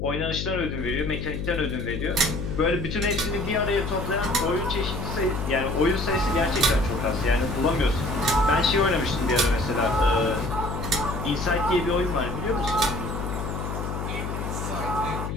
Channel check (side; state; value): left; noise; hum, 4 dB below the sound